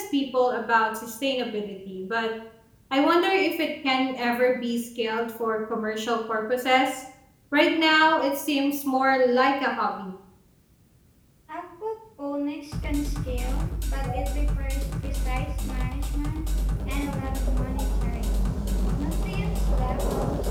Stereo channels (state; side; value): identical; both; correlation 1.00